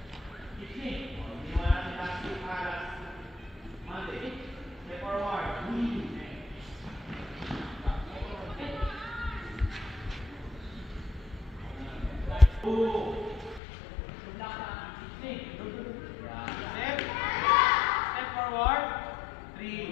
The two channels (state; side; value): drops out; right; at 13.6 s